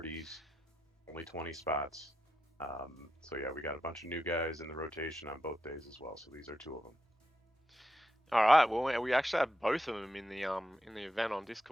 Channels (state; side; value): normal; both; correlation 0.86